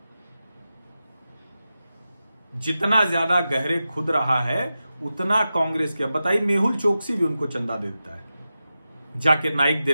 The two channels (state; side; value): inverted; both; correlation -0.92